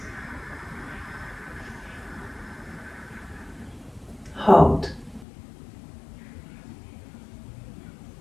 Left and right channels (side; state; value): right; drops out; at 5.2 s